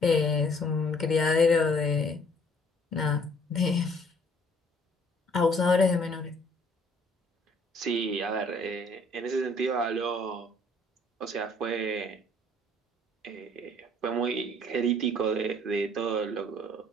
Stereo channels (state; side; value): normal; both; correlation 0.59